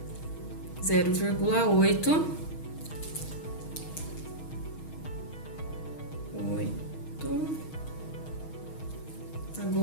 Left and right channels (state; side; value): late; right; 6.4 ms